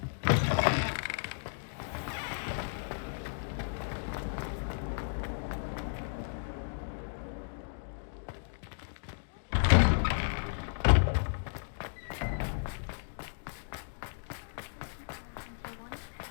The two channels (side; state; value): right; silent; digital silence